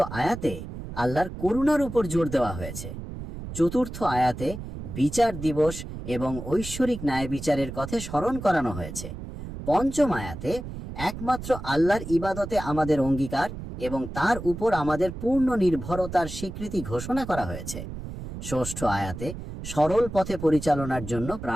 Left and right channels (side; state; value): right; noise; rumble, 9 dB below the sound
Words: আয়াতে আল্লাহর করুণার উপর জোর দেওয়া হয়েছে। চতুর্থ আয়াতে বিচার দিবস এবং ঐশ্বরিক ন্যায় বিচারের কথা স্মরণ করানো হয়েছে। পঞ্চম আয়াতে একমাত্র আল্লাহর ইবাদতে আমাদের অঙ্গীকার এবং তার উপর আমাদের পূর্ণ নির্ভরতার স্বীকৃতি ঘোষণা করা হয়েছে। ষষ্ঠ আয়াতে সরল পথে পরিচালনার জন্য